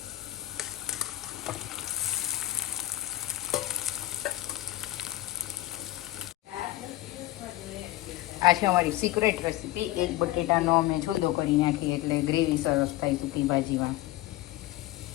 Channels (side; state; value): right; quieter; 16.5 dB